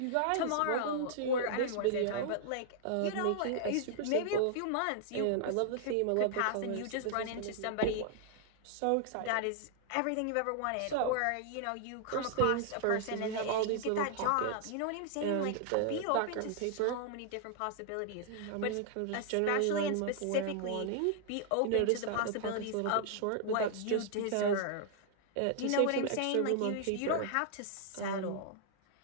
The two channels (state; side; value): different; both; correlation -0.01